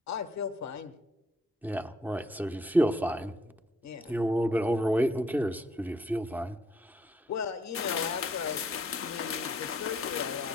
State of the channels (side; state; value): both; normal; correlation 0.67